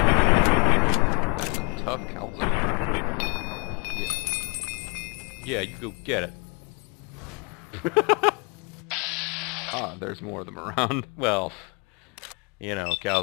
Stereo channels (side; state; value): right; quieter; 31.0 dB